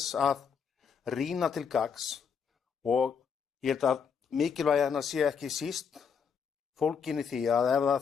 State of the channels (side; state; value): right; quieter; 6.6 dB